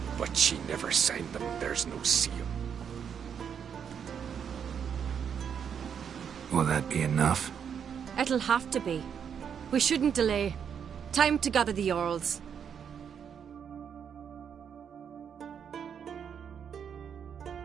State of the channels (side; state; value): left; quieter; 7.7 dB